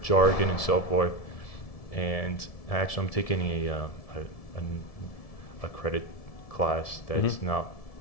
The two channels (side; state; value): right; late; 1.7 ms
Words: and so forth. And actually, I'm taking a credit class that's not